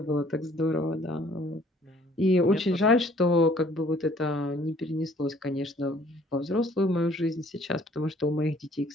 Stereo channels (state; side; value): normal; both; correlation 0.57